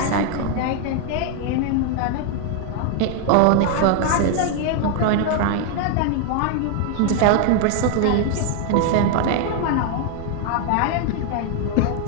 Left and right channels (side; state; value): both; different; correlation 0.00